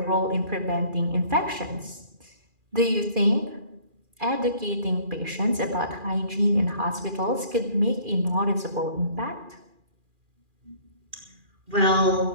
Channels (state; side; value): late; left; 2.4 ms